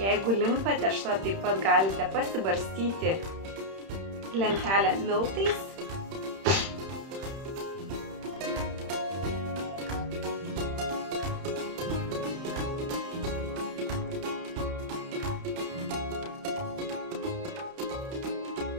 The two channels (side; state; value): left; late; 31 ms